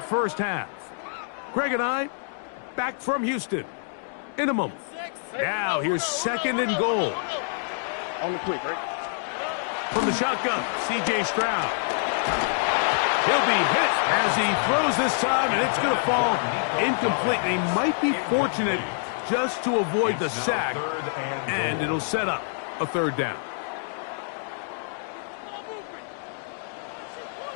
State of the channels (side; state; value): right; silent; digital silence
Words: first half. Greg and I back from Houston in a moment. Now here's second and goal. On the quick, right? From the shotgun, C.J. Stroud. He'll be hit as he throws this time, and it's going to fall incomplete. He might be fortunate just to avoid the sack, and it'll set up a third down.